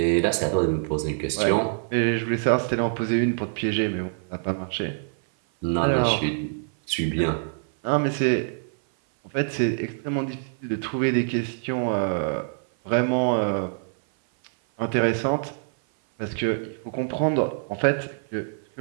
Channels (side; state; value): left; silent; 56 dB below the other